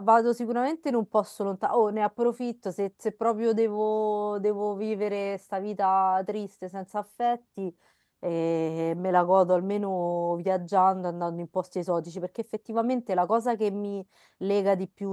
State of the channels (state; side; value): identical; both; correlation 1.00